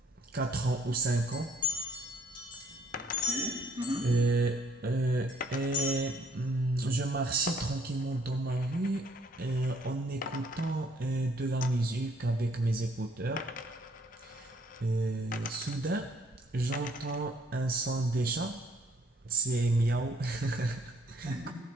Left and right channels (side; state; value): both; normal; correlation 0.62